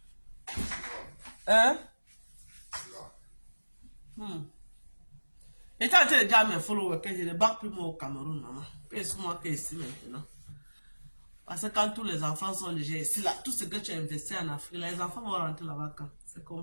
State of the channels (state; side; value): inverted; both; correlation -1.00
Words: Hein? Et quand tu es déjà mes followers, que je ne bats plus moi au Cameroun, maman. Pèse-moi que ici maintenant. Parce que quand tous les enfants sont déjà ici, là, tout ce que tu as investi en Afrique, là, les enfants vont rentrer là-bas quand? C'est